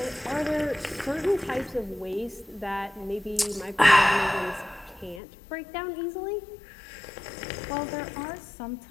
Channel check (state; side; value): drops out; right; at 5.2 s